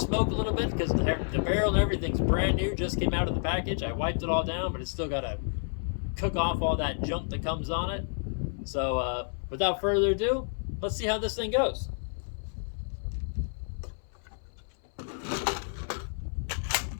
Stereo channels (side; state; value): right; silent; 58 dB below the other